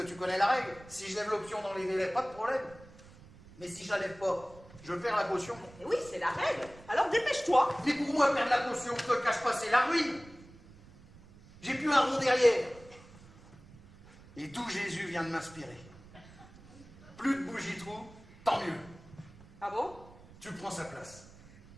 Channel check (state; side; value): noise; right; rumble, 21 dB below the sound